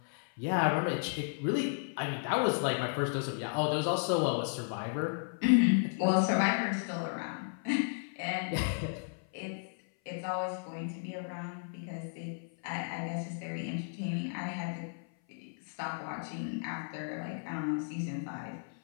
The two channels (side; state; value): right; silent; 55 dB below the other